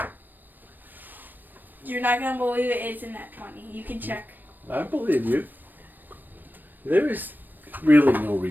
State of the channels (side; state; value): left; late; 0.091 ms